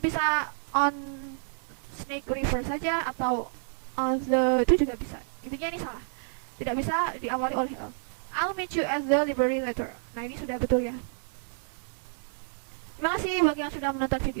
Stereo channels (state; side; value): silent; left; 58 dB below the other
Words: on snake river saja, atau on the, itu juga bisa. Intinya ini salah, tidak bisa diawali oleh a. I'll meet you at the library later. Nah ini sudah betul ya. Terima kasih bagi yang sudah menonton